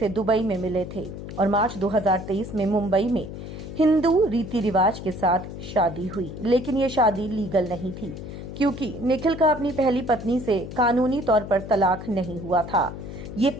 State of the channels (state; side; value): noise; left; hum, 10 dB below the sound